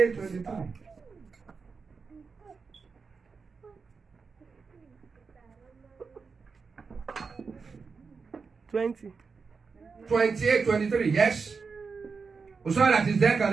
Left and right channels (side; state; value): left; quieter; 5.0 dB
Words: 23. 28, 23, yes? Someone that is there can